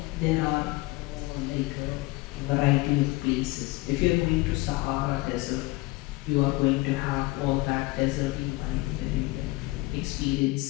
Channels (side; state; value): right; quieter; 21.6 dB